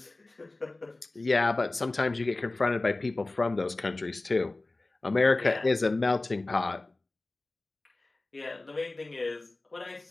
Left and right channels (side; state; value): right; quieter; 3.0 dB